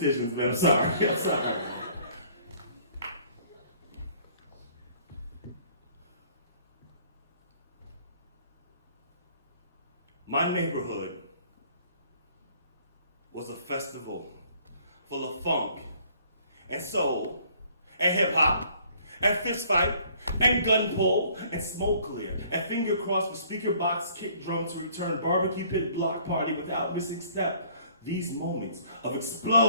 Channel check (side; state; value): both; inverted; correlation -0.58